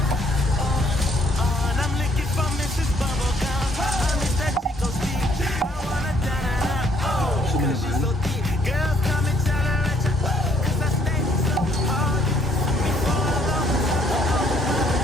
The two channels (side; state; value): both; normal; correlation 0.65